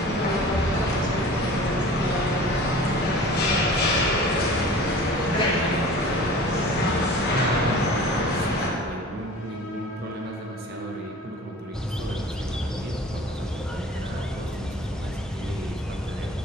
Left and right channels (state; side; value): normal; both; correlation 0.42